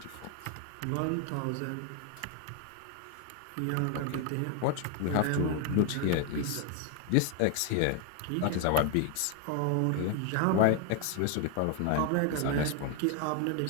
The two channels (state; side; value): different; both; correlation 0.00